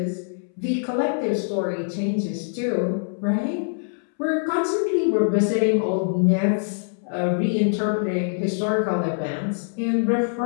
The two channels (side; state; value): right; silent; 63 dB below the other